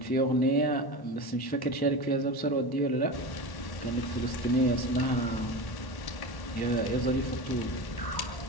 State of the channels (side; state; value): right; late; 1.1 ms